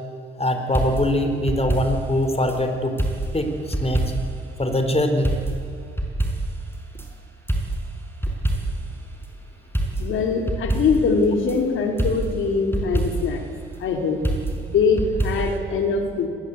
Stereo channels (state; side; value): normal; both; correlation 0.57